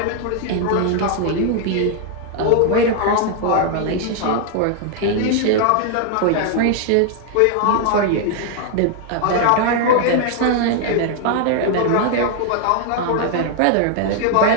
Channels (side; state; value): both; different; correlation 0.00